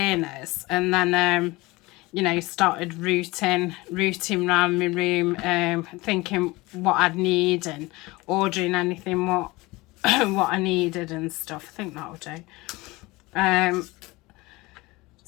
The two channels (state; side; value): quieter; right; 21.9 dB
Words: and then you know, started rooting around my room, thinking what I'd need and ordering anything what I needed and stuff. I think that'll do.